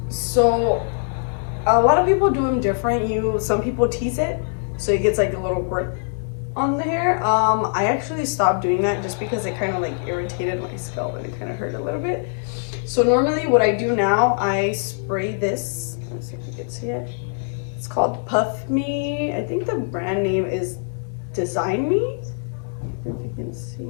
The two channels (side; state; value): right; silent; digital silence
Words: So a lot of people do them different. Some people tease it so it gets like a little grip on the hair. I actually stopped doing that just because it kind of like irritated my scalp and it kind of hurt a little bit. So normally what I do now, I spray this. Let's see if you can see it. It's called Puff Me. I think the brand name is Design Me. If you can